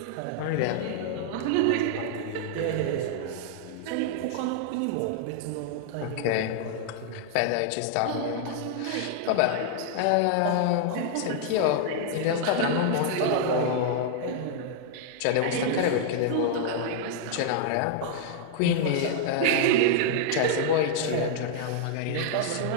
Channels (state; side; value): different; both; correlation -0.01